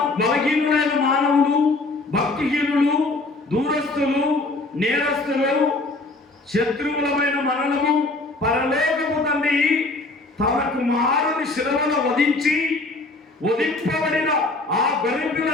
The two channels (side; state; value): right; quieter; 3.1 dB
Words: బలహీనులైన మానవులు, భక్తిహీనులు, దూరస్తులు, నేరస్తులు, శత్రువులమైన మనలను పరలోకపు తండ్రి తన కుమారుని శిలువలో వధింపబడిన ఆ గొర్రెపిల్ల